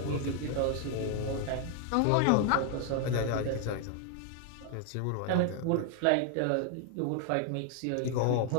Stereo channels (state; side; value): different; both; correlation 0.00